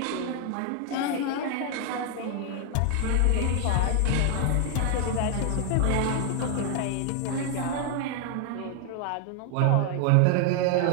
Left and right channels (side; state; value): both; different; correlation 0.00